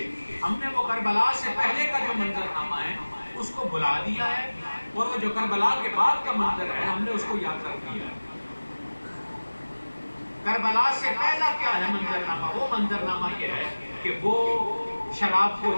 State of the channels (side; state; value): both; inverted; correlation -1.00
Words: ہم نے وہ کربلا سے پہلے کا جو منظرنامہ ہے اس کو بھلا دیا ہے، اور وہ جو کربلا کے بعد کا منظر ہے ہم نے اس کو یاد کر دیا ہے۔ کربلا سے پہلا کیا ہے منظرنامہ؟ وہ منظرنامہ یہ ہے کہ وہ شراب کو